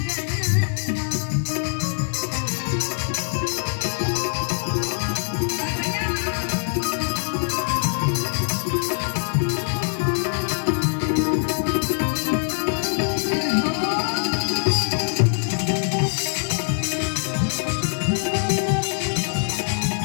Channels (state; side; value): silent; right; digital silence